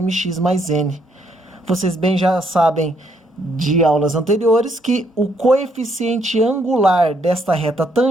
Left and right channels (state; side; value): normal; both; correlation 0.71